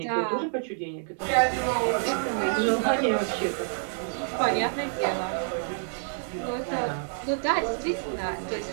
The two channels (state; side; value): silent; left; digital silence